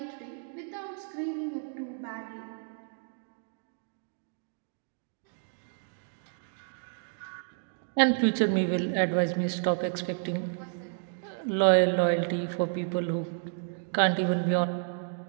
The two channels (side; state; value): left; silent; 57 dB below the other